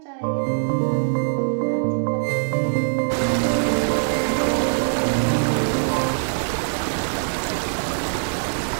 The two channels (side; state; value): left; silent; 64 dB below the other